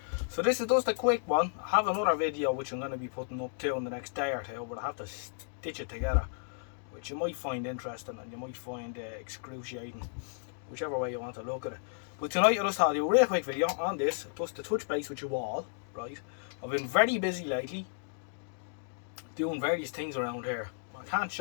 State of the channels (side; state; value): right; silent; digital silence